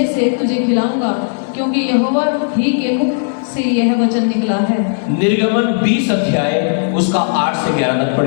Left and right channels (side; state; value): right; silent; digital silence